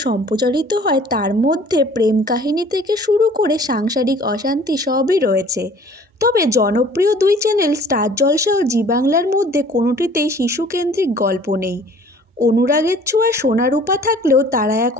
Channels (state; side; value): normal; both; correlation 0.51